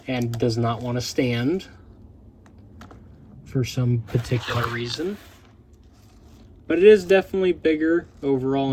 and does not want to stand for some particular reason. But it is definitely bigger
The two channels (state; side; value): identical; both; correlation 1.00